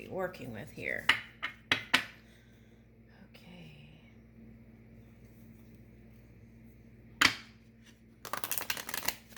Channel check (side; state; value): both; identical; correlation 1.00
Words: working with here. Okay.